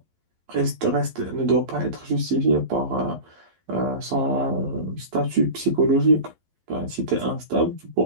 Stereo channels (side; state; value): left; late; 11 ms